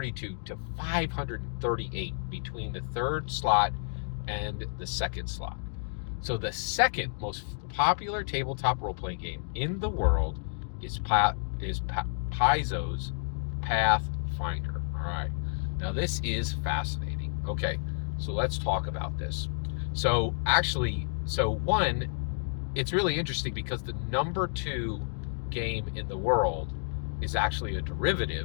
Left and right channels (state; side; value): silent; right; digital silence